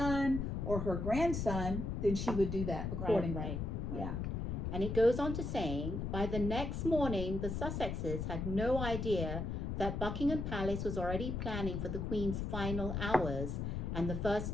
or her grandson, then she would do that accordingly. Right. Yeah. And it goes on to saying, by the next morning, the Sussexes had no idea that Buckingham Palace was already planning for the Queen's final hours and the first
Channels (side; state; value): left; noise; rumble, 2 dB below the sound